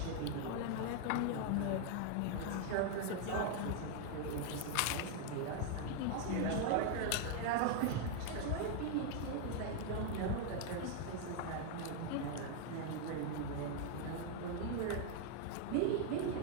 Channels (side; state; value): both; different; correlation 0.00